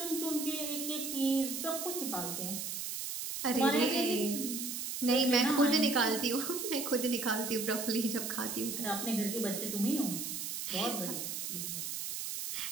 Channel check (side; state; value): right; noise; hiss, 4 dB below the sound